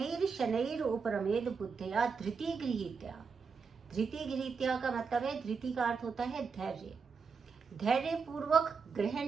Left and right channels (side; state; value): left; quieter; 5.4 dB